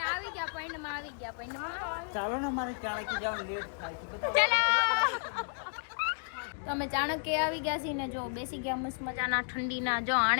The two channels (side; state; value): right; silent; digital silence